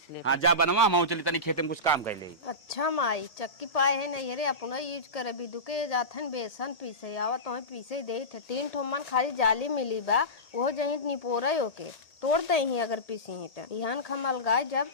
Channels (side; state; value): right; late; 1.7 ms